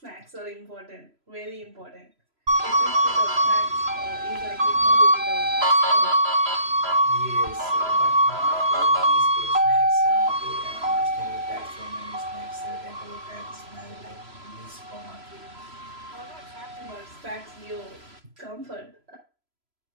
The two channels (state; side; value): late; left; 3.0 ms